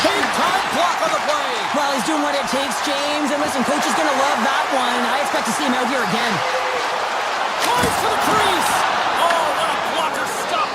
Big time block on the play. Well, he's doing what it takes, James. And listen, coach is going to love that one. I expect to see him out here again. Drives to the crease. Oh, what a blocker stop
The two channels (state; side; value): identical; both; correlation 1.00